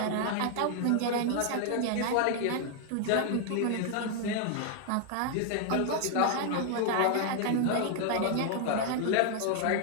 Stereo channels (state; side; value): different; both; correlation 0.00